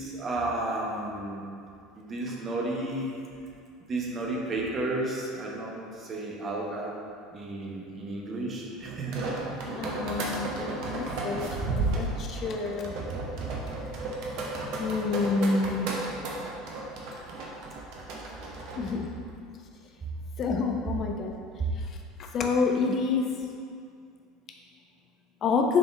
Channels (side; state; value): both; normal; correlation 0.44